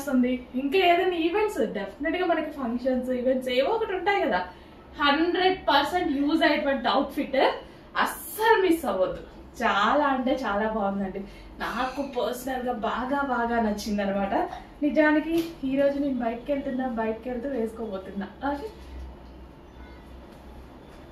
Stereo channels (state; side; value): identical; both; correlation 1.00